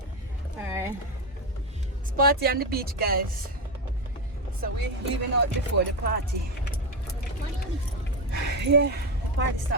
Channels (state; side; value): normal; both; correlation 0.12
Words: Alright. It's party on the beach, guys. So we're leaving out before the party. Yeah, party